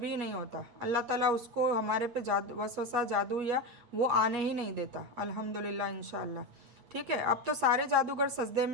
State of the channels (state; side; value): late; left; 8.3 ms